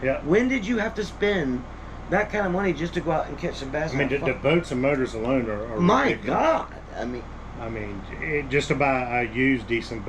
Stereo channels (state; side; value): identical; both; correlation 1.00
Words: Yeah. When did you have to spend that kind of money just to go out and catch some bass? I mean, and the have fun? boats and motors alone are My ridiculous. God. I mean, Just to buy a used decent